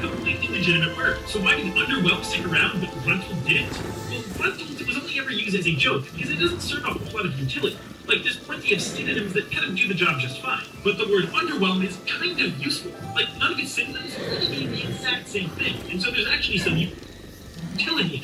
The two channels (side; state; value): both; identical; correlation 1.00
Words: legitimate word. So why did underwhelmed stick around, but gruntled didn't? Well, gruntled was only ever used as a joke, because it doesn't serve a whole lot of utility. Like, there's plenty of synonyms that kind of do the job just fine. But the word underwhelmed is kind of useful. Like, none of its synonyms really mean the exact same thing, and so there's actually some utility in